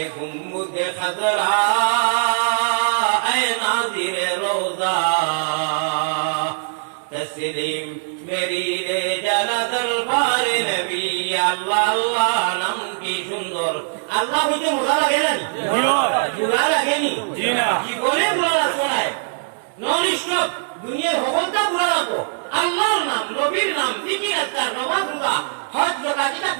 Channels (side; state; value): left; silent; digital silence